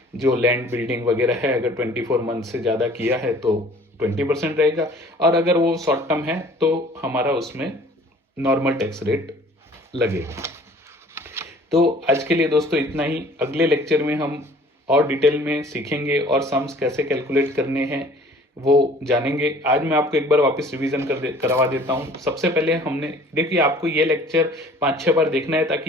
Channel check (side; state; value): both; normal; correlation 0.51